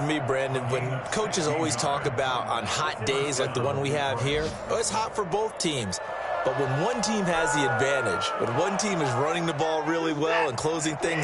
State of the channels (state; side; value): identical; both; correlation 1.00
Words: me, Brandon, when coaches always talk about on hot days like the one we have here, it's hot for both teams. But when one team has the advantage, when one team is running the ball really well and closing